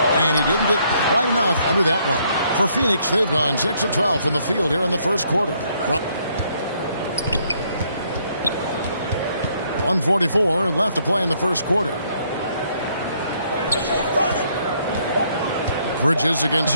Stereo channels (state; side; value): inverted; both; correlation -0.69